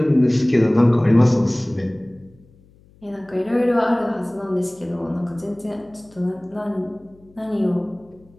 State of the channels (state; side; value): noise; left; hum, 29 dB below the sound